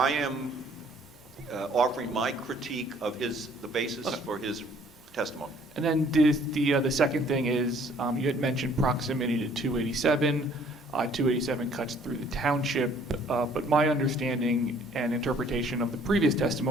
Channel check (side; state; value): both; normal; correlation 0.58